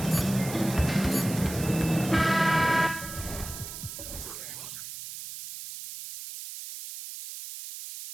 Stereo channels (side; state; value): right; noise; hiss, 10 dB below the sound